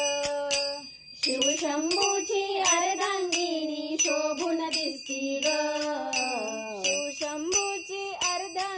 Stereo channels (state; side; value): identical; both; correlation 1.00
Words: शिवशंभूची अर्धांगिनी शोभून दिसती ग, शिवशंभूची